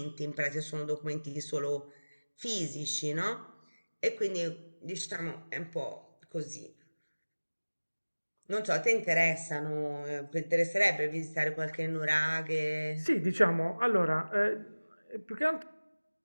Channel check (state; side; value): inverted; both; correlation -1.00